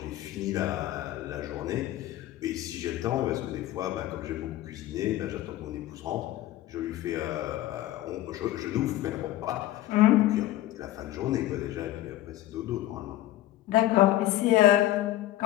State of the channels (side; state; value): right; quieter; 14.7 dB